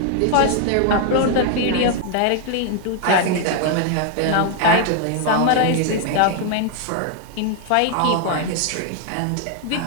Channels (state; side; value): different; both; correlation 0.00